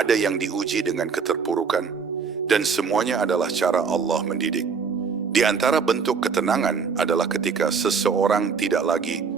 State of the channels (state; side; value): quieter; left; 5.7 dB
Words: yang diuji dengan keterpurukan, dan semuanya adalah cara Allah mendidik. Di antara bentuk ketenangan adalah ketika seseorang tidak lagi